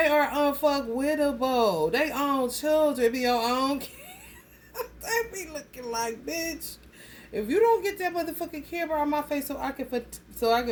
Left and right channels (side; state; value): both; identical; correlation 1.00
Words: are unfuckwittable. They own children, be your own kids. They be looking like, bitch. If you don't get that motherfucking camera on my face so I can